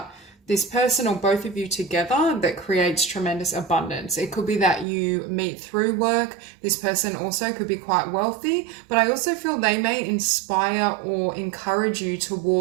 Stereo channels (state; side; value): drops out; left; at 4.9 s